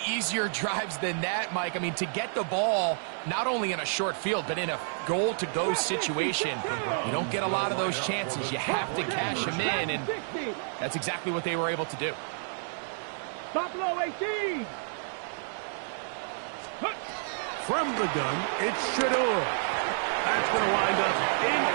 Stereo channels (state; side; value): silent; left; digital silence